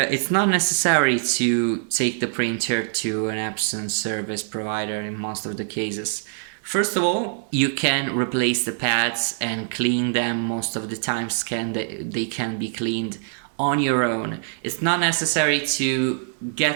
not necessary to take the printer to an Epson service provider in most of the cases. First of all, you can replace the pads and clean them. Most of the times they can be cleaned on your own. It's not necessary to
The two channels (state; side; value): silent; left; 63 dB below the other